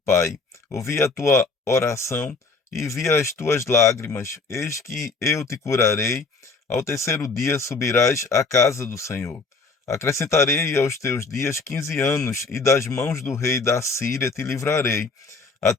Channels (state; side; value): quieter; right; 4.0 dB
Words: pai: ouvi a tua oração e vi as tuas lágrimas. Eis que eu te curarei. Ao terceiro dia subirás à casa do Senhor. Acrescentarei aos teus dias 15 anos, e das mãos do rei da Síria te livrarei, a